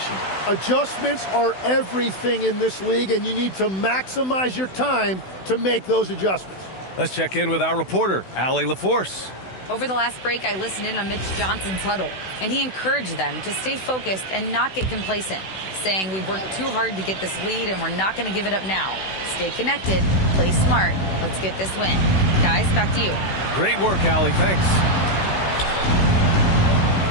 Adjustments are everything in this league, and you need to maximize your time to make those adjustments. Let's check in with our reporter, Allie LaForce. Over the last break, I listened in on Mitch Johnson's huddle, and he encouraged them to stay focused and not get complacent, saying we've worked too hard to get this lead and we're not going to give it up now. Stay connected, play smart, let's get this win. Guys, back to you. Great work, Allie. Thanks.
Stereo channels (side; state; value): right; late; 16 ms